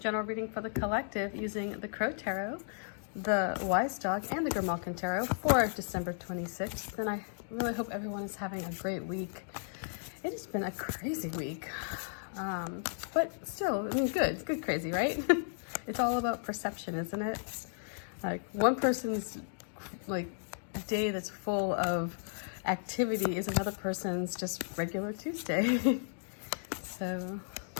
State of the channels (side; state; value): right; silent; digital silence